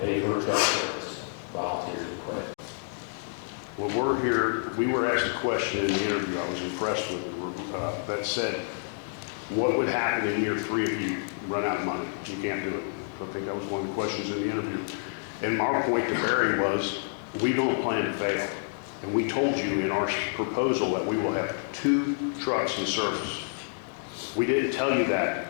pay for a truck service, volunteers would quit. Well, we're here, we were asked a question in the interview, I was impressed with it, that said, what would happen in year 3 if you run out of money? You can't do it. So I think that was one of the questions in the interview. And our point to Barry was, we don't plan to fail. And we told you in our proposal that we will have 2 trucks in service. We didn't tell you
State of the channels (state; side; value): silent; right; digital silence